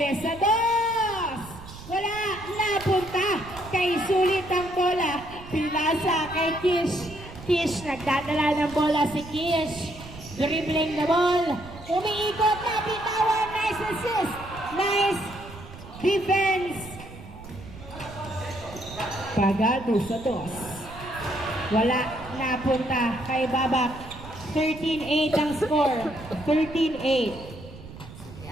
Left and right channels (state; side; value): noise; right; rumble, 15 dB below the sound